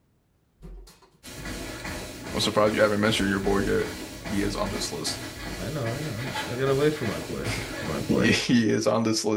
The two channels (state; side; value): identical; both; correlation 1.00